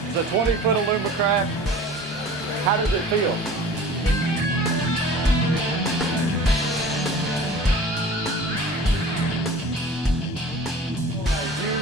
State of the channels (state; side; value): normal; both; correlation 0.42